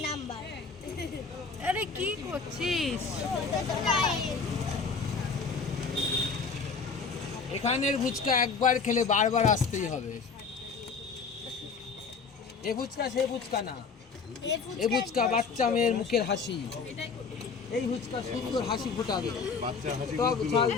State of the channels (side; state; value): right; quieter; 5.1 dB